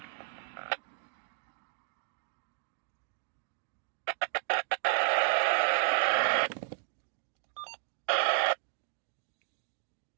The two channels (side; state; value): left; silent; digital silence